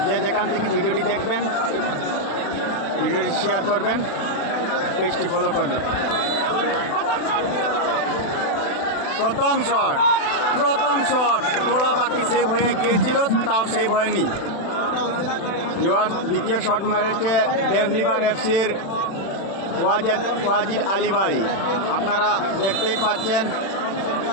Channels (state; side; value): late; right; 36 ms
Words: যে যেখান থেকে ভিডিওটি দেখবেন ভিডিওটি শেয়ার করবেন, পেজটি ফলো করবেন। প্রথম শট তোড়া বাকি সেভ হয়ে গিয়েছিল, তাও সেভ হয়নি। ভিউয়ার্স দ্বিতীয় শট মেরেছে ডেভলিভার এফসির ওয়াজিদ আলী ভাই, আপনারা দেখতেই পাচ্ছেন।